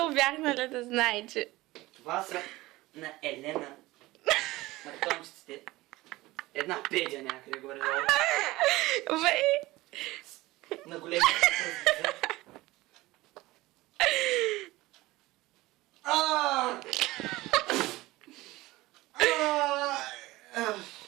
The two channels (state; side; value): quieter; left; 19.2 dB